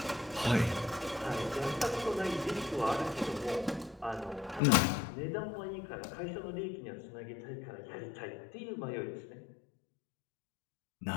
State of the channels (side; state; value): right; drops out; at 4.6 s